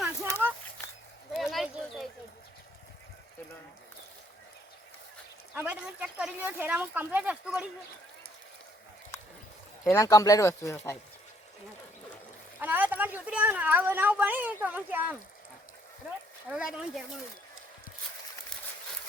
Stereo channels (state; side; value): normal; both; correlation 0.67